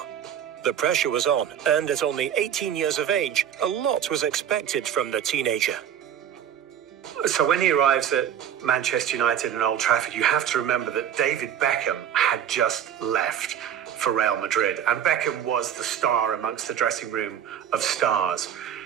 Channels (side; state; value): left; quieter; 9.4 dB